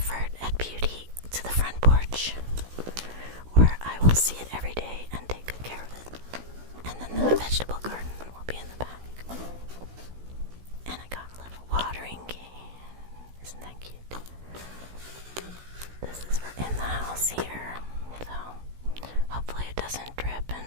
at beauty to the front porch, where I will see it every day and take good care of it. And then the vegetable garden will be in the back. And I got a little watering can. Isn't that cute? This is for in the house here, so hopefully it doesn't drip. And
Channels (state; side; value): late; left; 16 ms